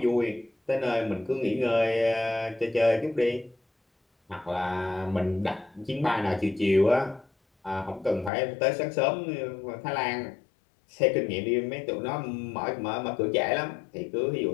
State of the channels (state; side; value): drops out; right; at 8.3 s